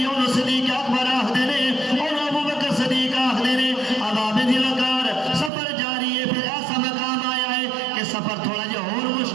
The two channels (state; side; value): drops out; left; at 5.5 s